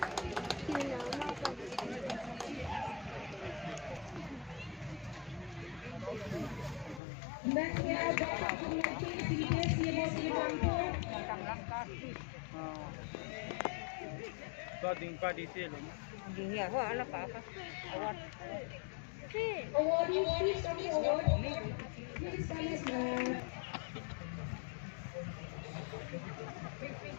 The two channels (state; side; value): drops out; right; at 7.0 s